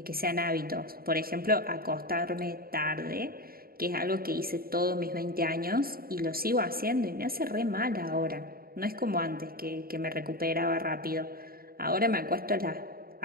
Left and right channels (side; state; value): left; late; 0.43 ms